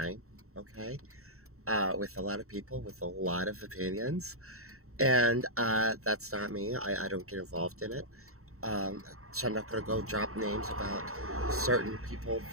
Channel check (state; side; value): late; left; 0.63 ms